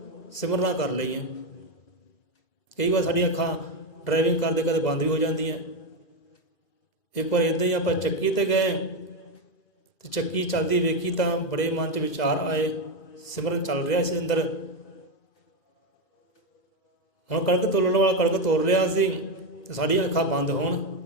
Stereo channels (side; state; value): right; late; 2.0 ms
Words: ਸਿਮਰਨਾ ਕਰ ਲਈਏ। ਕਈ ਵਾਰ ਸਾਡੀਆਂ ਅੱਖਾਂ ਡਰਾਈਵਿੰਗ ਕਰਦੇ ਕਦੇ ਬੰਦ ਵੀ ਹੋ ਜਾਂਦੀਆਂ। ਇੱਕ ਵਾਰ ਇੱਦਾਂ ਹੀ ਆਪਾਂ ਚੱਕੀ 'ਤੇ ਗਏ ਅਤੇ ਚੱਕੀ ਚੱਲਦੀ ਵੇਖੀ ਤਾਂ ਬੜੇ ਮਨ 'ਚ ਵਿਚਾਰ ਆਏ, ਸਿਮਰਨ ਚੱਲ ਰਿਹਾ ਸੀ ਅੰਦਰ। ਹੁਣ ਕਣਕ ਤੋਲਣ ਵਾਲਾ ਕਣਕ ਤੋਲ ਰਿਹਾ ਸੀ ਅਤੇ ਸਾਡੀਆਂ ਅੱਖਾਂ ਬੰਦ ਹੋਣ,